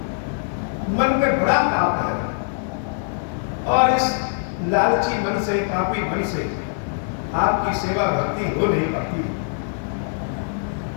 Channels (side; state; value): right; silent; digital silence